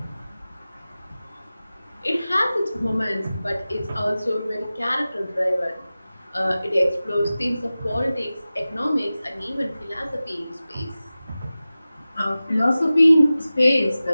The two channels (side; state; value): both; inverted; correlation -0.96